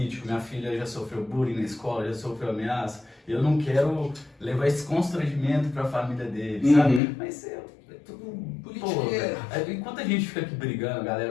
minha filha já sofreu bullying na escola, já sofreu ameaça, eu não quero levar esse constrangimento para a família dele, sabe? Mas é tudo politiqueiro. Enquanto a gente fica aqui brigando, a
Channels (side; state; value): right; drops out; at 7.0 s